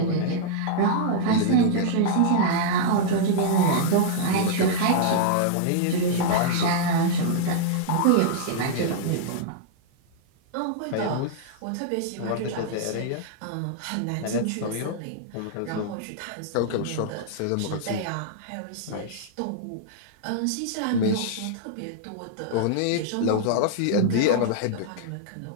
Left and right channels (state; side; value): different; both; correlation -0.01